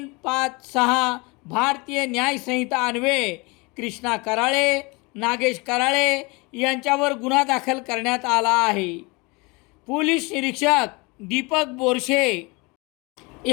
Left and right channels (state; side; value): quieter; right; 27.0 dB